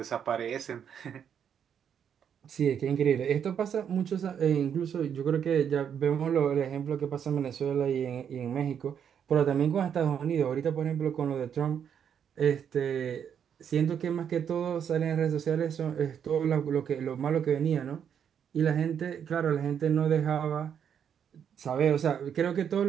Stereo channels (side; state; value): left; quieter; 8.2 dB